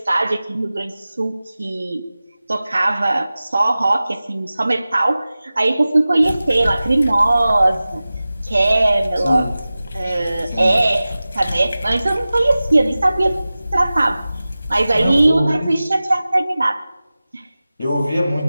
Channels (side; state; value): both; inverted; correlation -0.96